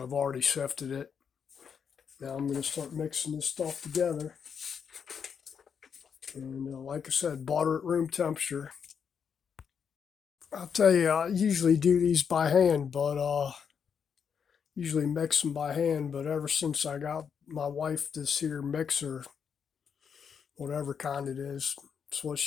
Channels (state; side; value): quieter; right; 7.0 dB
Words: I've already sifted it. Now I'm going to start mixing this stuff together. And like I said, butter at room temperature. I'll tell you, I usually do these by hand, but usually mix them by hand. But ever since I got my wife this here mixer, whatever kind it is, it's what